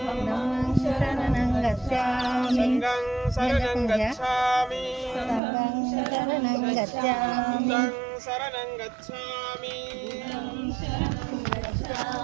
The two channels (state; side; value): drops out; left; at 5.4 s